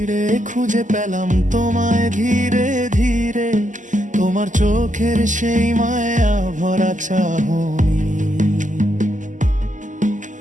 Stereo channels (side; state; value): left; late; 0.37 ms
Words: খুঁজে পেলাম তোমায় ধীরে ধীরে। তোমার চোখের সেই মায়া ভরা চাহনি